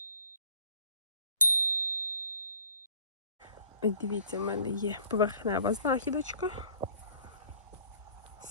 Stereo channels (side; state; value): both; inverted; correlation -0.49